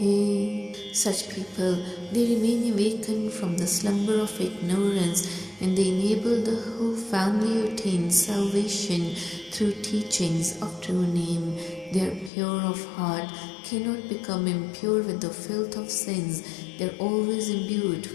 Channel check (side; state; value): right; drops out; at 12.3 s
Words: है. Such people, they remain awakened from the slumber of ignorance and they enable the whole family to attain salvation through teachings of true name. They are pure of heart, cannot become impure with the filth of sins. They are always imbued